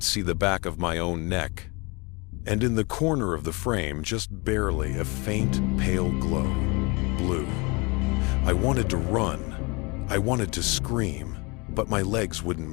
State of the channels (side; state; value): right; quieter; 28.2 dB